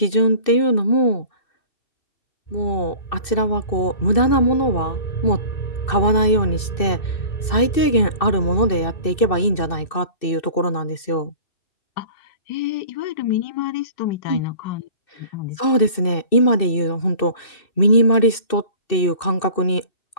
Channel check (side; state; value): right; late; 2.6 ms